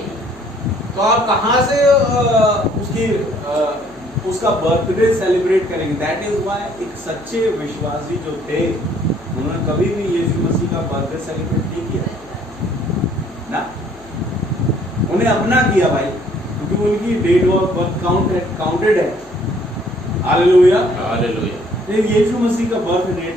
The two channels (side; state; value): left; noise; hum, 25 dB below the sound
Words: तो आप कहां से उसका बर्थडे सेलिब्रेट करेंगे? दैट इज व्हाई एक सच्चे विश्वासी जो थे उन्होंने कभी भी यीशु मसीह का बर्थडे सेलिब्रेट नहीं किया ना, उन्हें अपना किया भाई, क्योंकि उनकी डेट ऑफ बर्थ काउंटेड है। हालेलुया। हालेलुया। यीशु मसीह का बर्थ